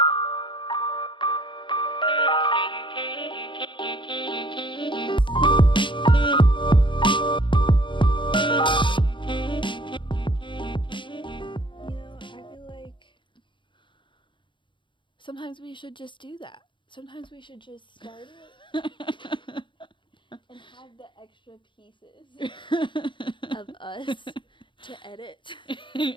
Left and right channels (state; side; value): late; right; 0.23 ms